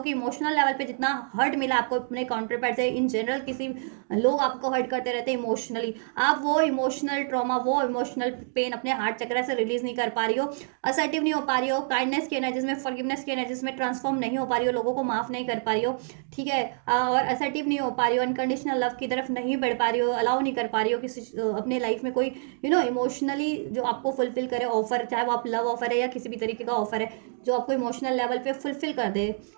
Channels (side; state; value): left; silent; digital silence